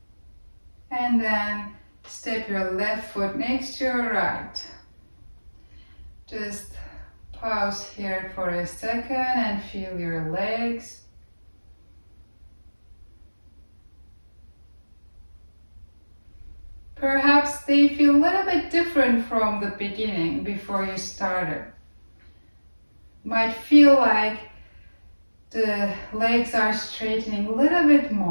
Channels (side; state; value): both; inverted; correlation -1.00